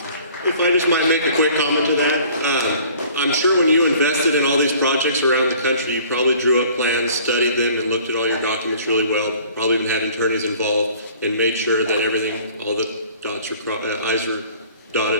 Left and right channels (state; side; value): inverted; both; correlation -0.51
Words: I just might make a quick comment to that, I'm sure when you invested in all these projects around the country, you probably drew up plans, studied them, and looked at all your documents really well. Probably even had attorneys involved and made sure that everything, all the I's are